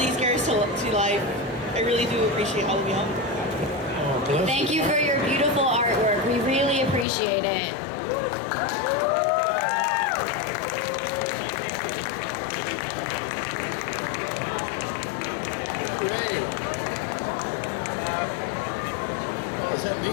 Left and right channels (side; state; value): right; drops out; at 7.1 s